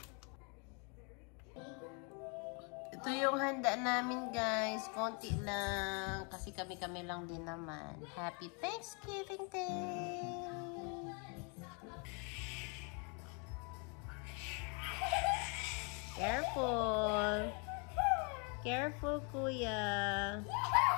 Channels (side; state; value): right; quieter; 35.2 dB